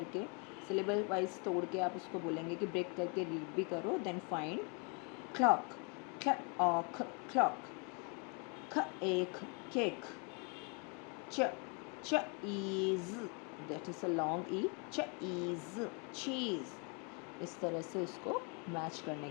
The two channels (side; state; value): right; quieter; 34.9 dB